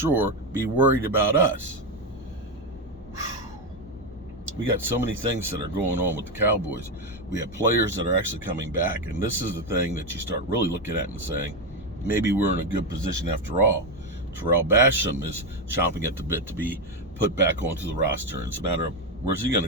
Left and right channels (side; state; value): both; normal; correlation 0.10